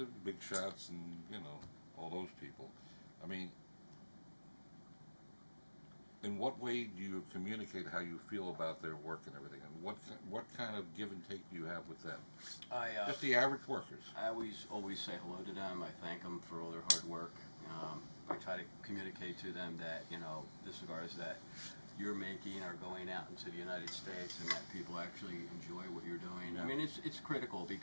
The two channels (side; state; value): both; inverted; correlation -1.00